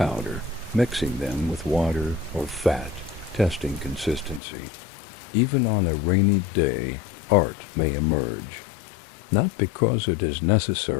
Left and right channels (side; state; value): right; drops out; at 4.4 s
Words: mixing them with water or fat, testing consistency. Even on a rainy day, art may emerge, not because it is